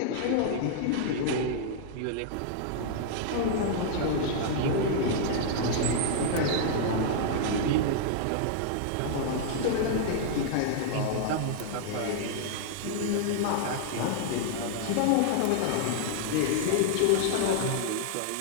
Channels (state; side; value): different; both; correlation -0.01